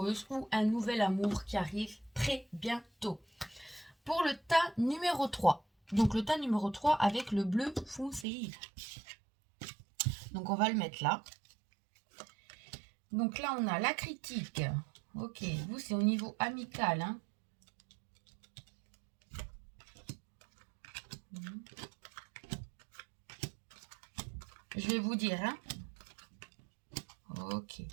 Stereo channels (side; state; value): left; drops out; at 8.2 s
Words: ou un nouvel amour qui arrive très bientôt. Pour le tas numéro 3. Donc le tas numéro 3 avec le bleu foncé. Donc on va le mettre là. Donc là, on a la critique. Ok, vous, c'est au niveau amical. Hein. Je vais vous dire. Hein. Ok.